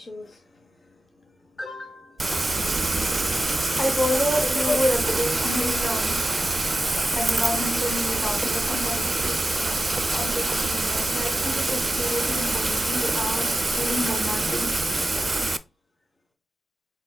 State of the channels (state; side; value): normal; both; correlation 0.94